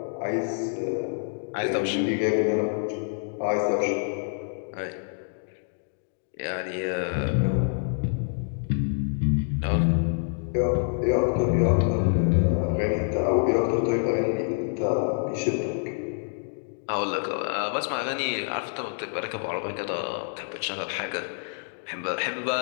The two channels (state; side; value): silent; right; digital silence